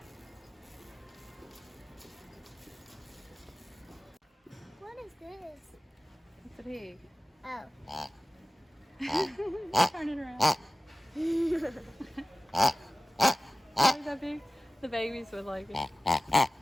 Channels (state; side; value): normal; both; correlation 0.96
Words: What is this? It's a pig. Oh. Turn it around. Is that big? The babies would like it.